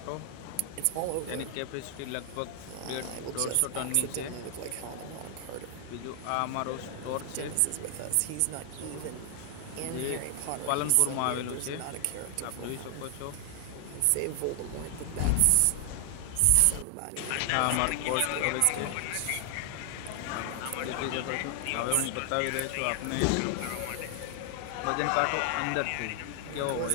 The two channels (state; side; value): different; both; correlation 0.00